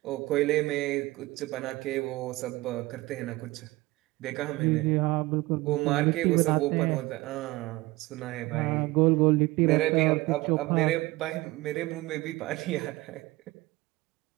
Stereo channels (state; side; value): quieter; left; 20.4 dB